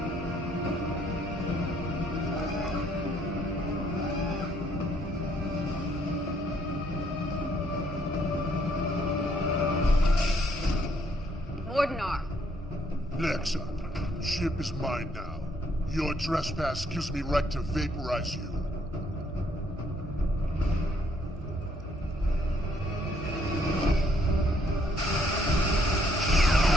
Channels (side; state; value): both; normal; correlation 0.68